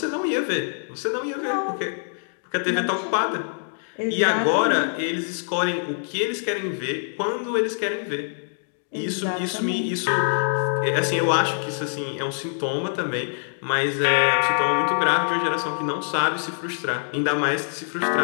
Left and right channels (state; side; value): silent; right; digital silence